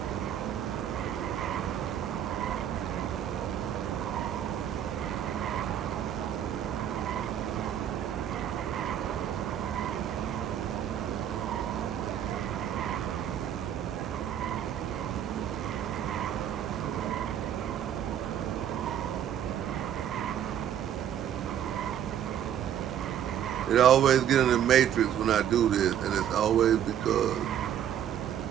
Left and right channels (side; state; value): left; quieter; 10.0 dB